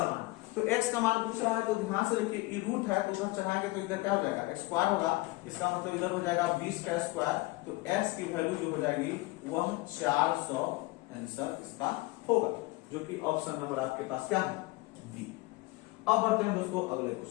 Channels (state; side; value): quieter; right; 21.7 dB